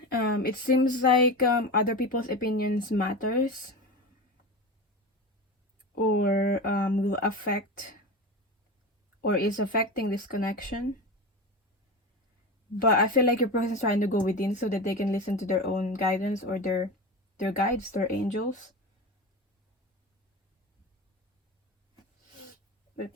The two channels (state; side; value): normal; both; correlation 0.25